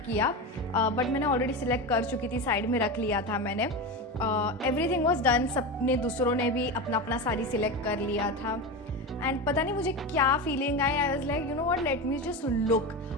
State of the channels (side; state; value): both; normal; correlation 0.21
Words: किया, बट मैंने ऑलरेडी सिलेक्ट कर चुकी थी, साइड में रख लिया था मैंने. Everything was done. सबने दूसरों ने भी अपना अपना साड़ी सिलेक्ट कर लिया था. एंड पता नहीं मुझे क्या फीलिंग आई, I was like you know what, let me just look,